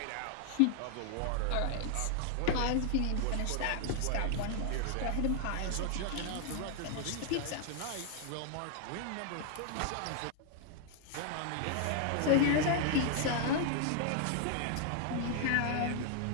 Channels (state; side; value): different; both; correlation 0.00